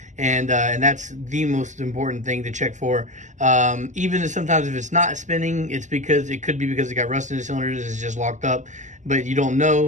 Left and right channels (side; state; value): left; late; 0.35 ms